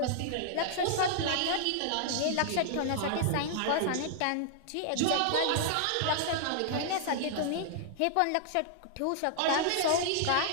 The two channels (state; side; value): different; both; correlation -0.01